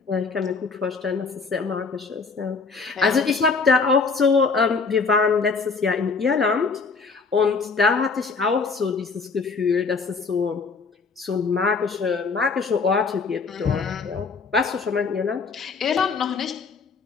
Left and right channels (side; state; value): right; quieter; 4.8 dB